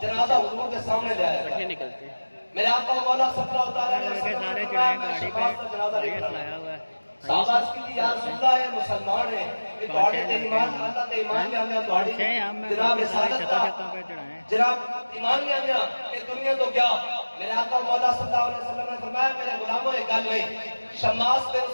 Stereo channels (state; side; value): inverted; both; correlation -1.00